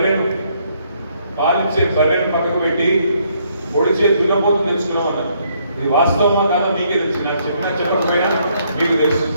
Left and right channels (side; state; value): both; inverted; correlation -0.70